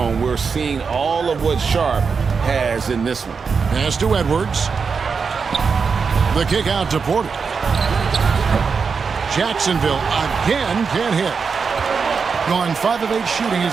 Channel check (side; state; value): left; quieter; 5.5 dB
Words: We're seeing all of what Sharp has in this one. Pass to Edwards. The kick out to Porter. Jacksonville again can't hit. Going 5 of 8 shooting